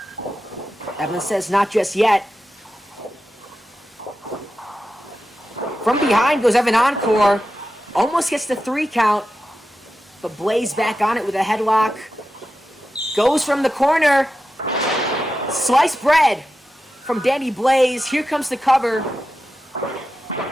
Evan says not just yet. From behind goes Evan Encore. Almost gets the 3 count. But Blaze back on it with a headlock. Goes from the corner. Sliced bread from Danny Blaze. Here comes the cover.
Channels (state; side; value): normal; both; correlation 0.91